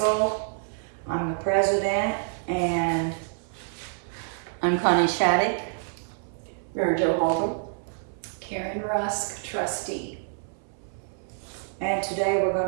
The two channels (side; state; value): left; silent; 60 dB below the other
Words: I'm the president, and I'm Connie Shattuck. Mary Jo Halton. Karen Rusk, trustee. today we're